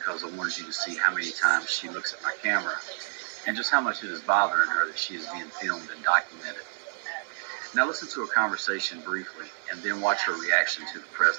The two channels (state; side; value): silent; left; 59 dB below the other